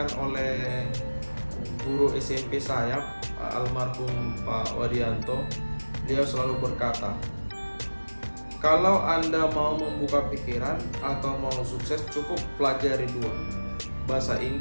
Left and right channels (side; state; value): both; inverted; correlation -1.00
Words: oleh guru SMP saya, almarhum Pak Wadianto. Dia selalu berkata, kalau Anda mau membuka pikiran atau mau sukses, cukup pelajari 2, bahasa